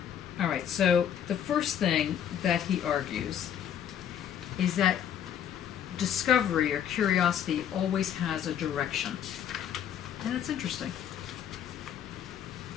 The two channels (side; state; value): right; quieter; 9.4 dB